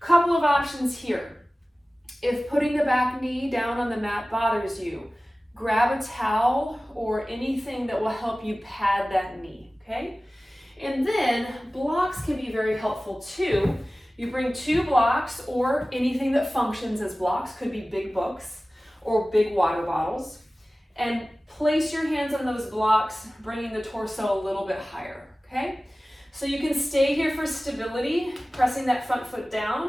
of options here. If putting the back knee down on the mat bothers you, grab a towel or anything that will help you pad that knee, okay? And then blocks can be very helpful too. You bring 2 blocks or anything that functions as blocks, could be big books or big water bottles, and place your hands on those blocks, bringing the torso a little bit higher, okay? So you can stay here for stability, pressing that front foot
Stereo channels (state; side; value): normal; both; correlation 0.97